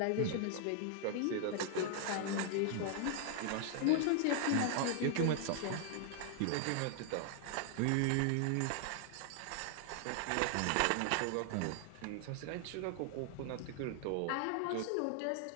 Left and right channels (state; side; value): different; both; correlation 0.00